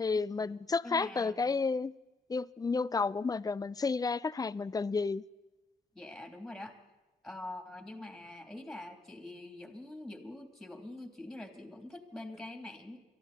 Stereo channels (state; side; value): quieter; right; 3.9 dB